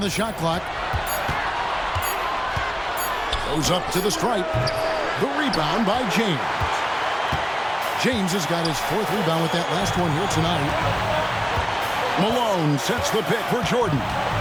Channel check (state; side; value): identical; both; correlation 1.00